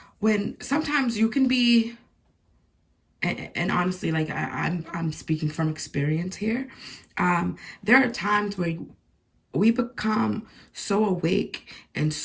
when sometimes you can be, and honestly, like I'm speaking from experience here. There are times where we become so awake and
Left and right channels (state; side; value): identical; both; correlation 1.00